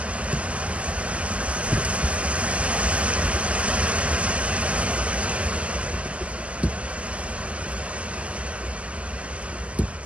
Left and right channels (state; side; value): late; left; 0.063 ms